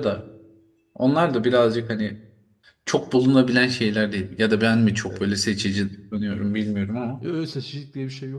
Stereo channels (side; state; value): both; identical; correlation 1.00